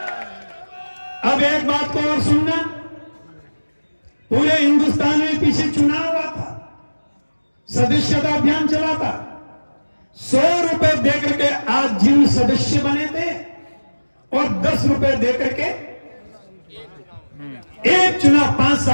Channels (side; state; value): both; inverted; correlation -1.00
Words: अब एक बात को और सुनना, पूरे हिंदुस्तान में पीछे चुनाव हुआ था, सदस्यता अभियान चला था। 100 रुपए देकर के आज जिन सदस्य बने थे और 10 रुपए देकर के एक चुनाव 5